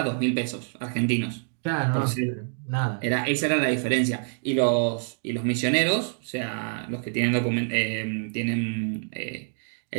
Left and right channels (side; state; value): left; silent; 60 dB below the other